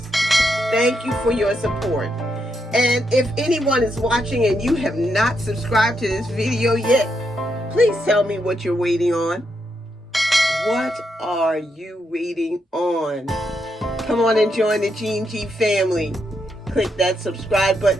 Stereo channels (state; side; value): normal; both; correlation 0.80